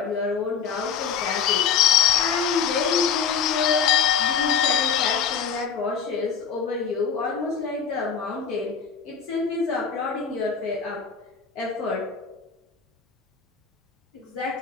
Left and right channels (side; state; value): right; quieter; 6.9 dB